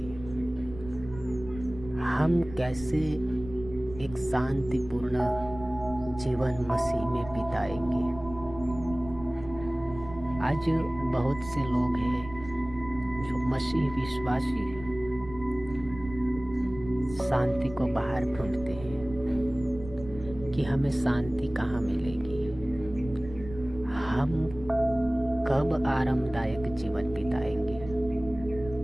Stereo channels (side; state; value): right; noise; rumble, 14 dB below the sound